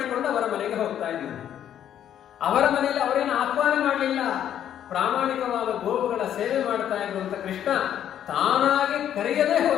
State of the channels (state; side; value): quieter; right; 10.3 dB